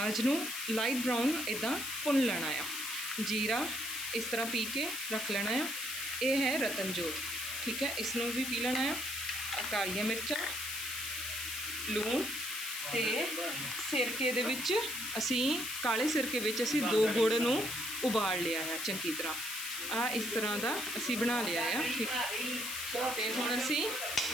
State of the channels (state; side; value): noise; left; hiss, 5 dB below the sound